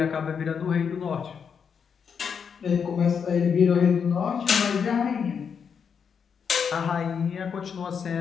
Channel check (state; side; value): quieter; right; 6.7 dB